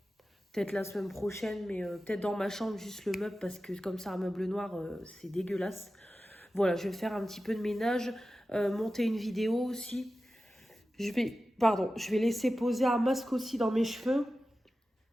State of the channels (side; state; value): both; normal; correlation 0.94